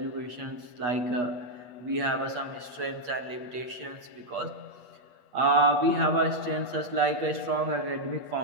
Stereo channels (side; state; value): left; late; 8.2 ms